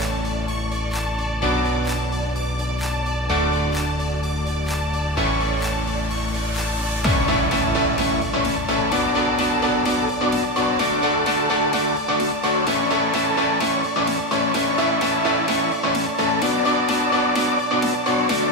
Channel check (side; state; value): both; normal; correlation 0.26